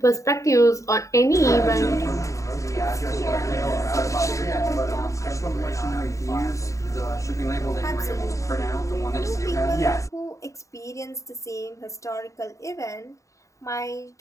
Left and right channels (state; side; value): late; right; 0.15 ms